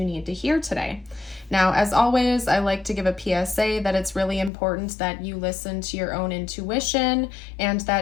need to hear today. Now, as always, I like to give a PSA that it's really important that you listen to your own intuition and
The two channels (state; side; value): drops out; right; at 4.5 s